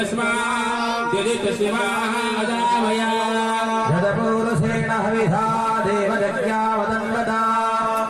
यदि तस्मादजामया यदपूरुषेण हविधा देवयज्ञा वदन्वता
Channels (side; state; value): both; identical; correlation 1.00